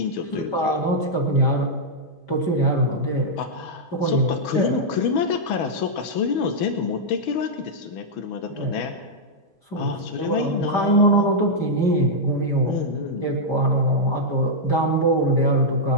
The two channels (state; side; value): late; right; 6.2 ms